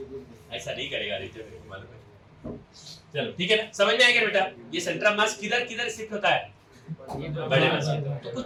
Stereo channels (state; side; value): identical; both; correlation 1.00